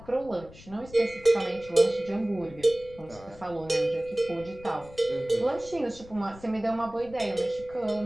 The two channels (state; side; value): noise; left; rumble, 19 dB below the sound